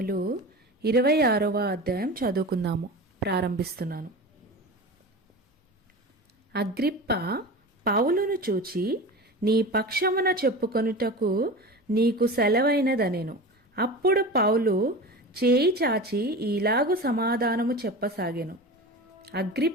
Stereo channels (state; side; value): normal; both; correlation 0.31